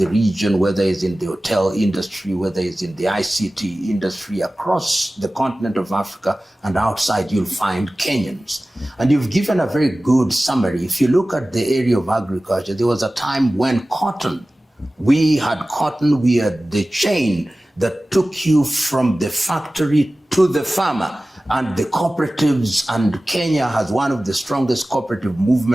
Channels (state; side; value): normal; both; correlation 0.97